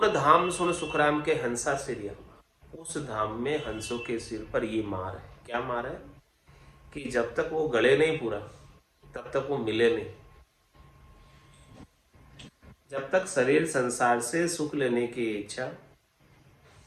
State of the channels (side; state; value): both; identical; correlation 1.00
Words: धाम सुन सुखराम के हंसा सिरिया, उस धाम में हंसों के सिर पर ये मार है। क्या मार है कि जब तक वो गले नहीं पूरा तब तक वो मिले नहीं। जब तक शरीर संसार से सुख लेने की इच्छा